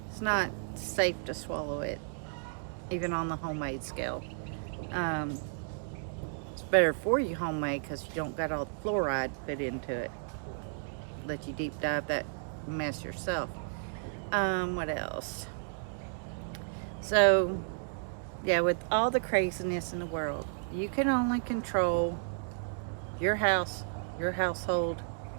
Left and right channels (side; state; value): left; silent; digital silence